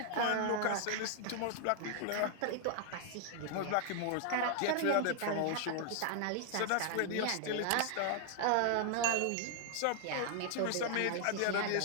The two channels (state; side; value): different; both; correlation 0.00